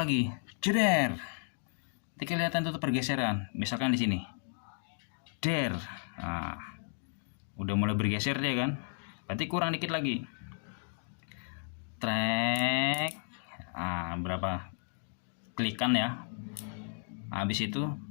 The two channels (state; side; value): silent; right; 55 dB below the other